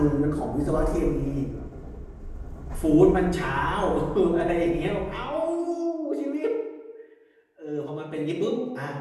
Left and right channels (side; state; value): both; identical; correlation 1.00